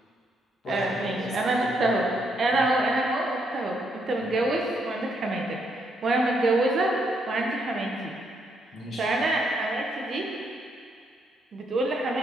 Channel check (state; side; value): normal; both; correlation 0.75